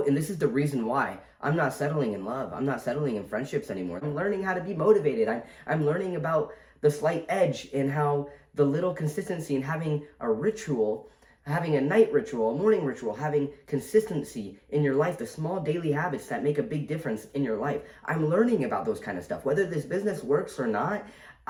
and this is the reason why I'm not settling in love. I'm not settling in friendships anymore. I'm learning how to be motivated. I'm learning about the slight edge and how the little consistency and having a ritual, having a night ritual, a morning ritual, having consistency in your life, the small daily habits that make a big difference in your life. I'm learning about those kind of stuff. Whether this business works or not,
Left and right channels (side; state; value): both; identical; correlation 1.00